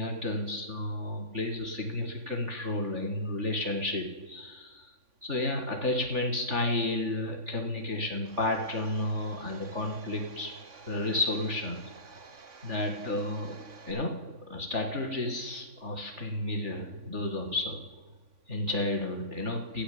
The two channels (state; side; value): late; left; 3.4 ms